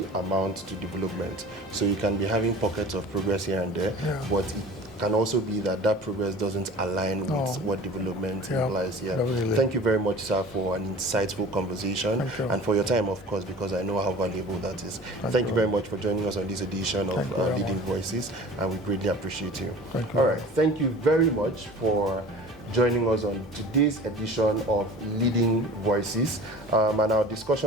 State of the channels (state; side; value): normal; both; correlation 0.42